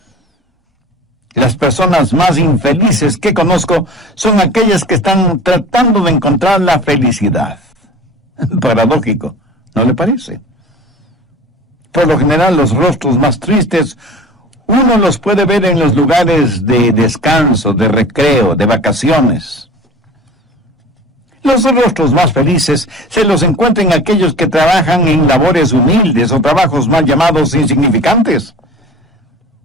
Las personas más infelices que conozco son aquellas que están tratando de encontrar la felicidad. Paradójico, ¿no le parece? Por lo general, los rostros más tristes uno los puede ver en los lugares de descanso, de recreo, de vacaciones. Los rostros más felices se los encuentran en aquellos que trabajan en labores humildes o trabajos mal llamados insignificantes.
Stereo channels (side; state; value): both; normal; correlation 0.40